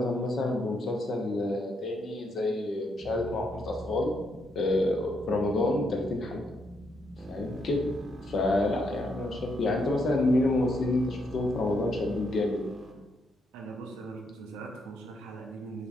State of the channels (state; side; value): normal; both; correlation 0.77